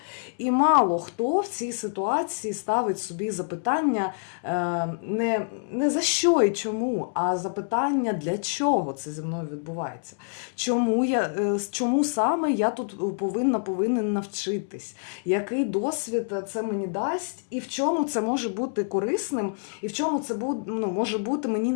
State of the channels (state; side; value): silent; right; digital silence